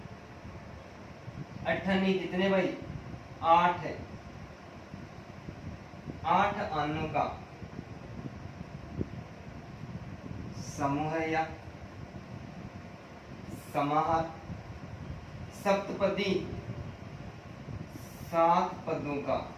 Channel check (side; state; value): both; identical; correlation 1.00